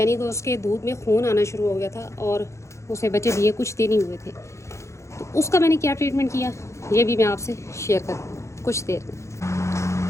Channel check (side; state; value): right; late; 0.14 ms